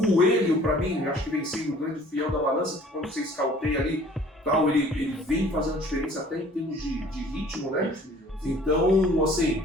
para mim, acho que vem sendo o grande fiel da balança, que quando você escauteia ali, tal, ele vem fazendo diferença até em termos de ritmo, né? Então, assim,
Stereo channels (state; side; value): normal; both; correlation 0.52